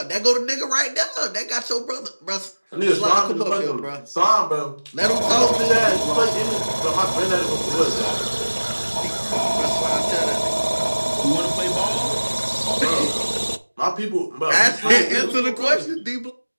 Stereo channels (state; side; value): inverted; both; correlation -1.00